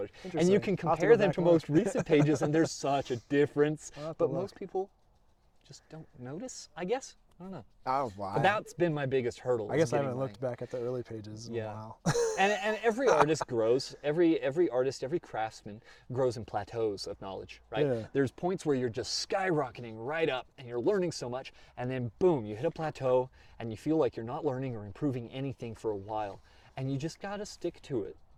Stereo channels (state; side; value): identical; both; correlation 1.00